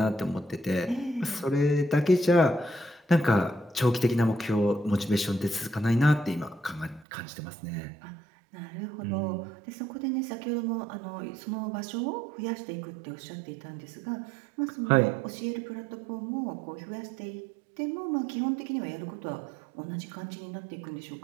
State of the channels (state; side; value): drops out; left; at 7.1 s